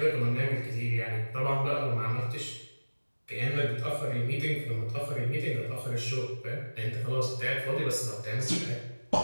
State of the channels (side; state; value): both; inverted; correlation -1.00